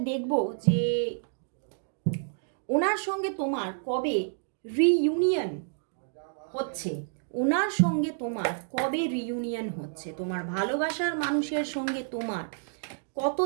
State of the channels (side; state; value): left; silent; digital silence